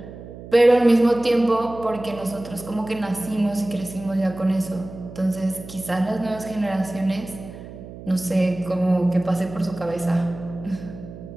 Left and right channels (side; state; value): right; noise; hum, 14 dB below the sound